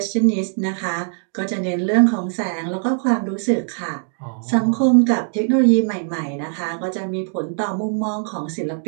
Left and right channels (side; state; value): left; silent; digital silence